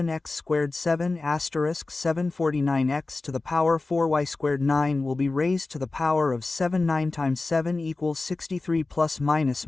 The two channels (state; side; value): quieter; right; 3.4 dB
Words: squared. 7 asterisk 749x to the power 4y squared. 9 will be raised to the power of 7 9 times 7 equals 63 plus minus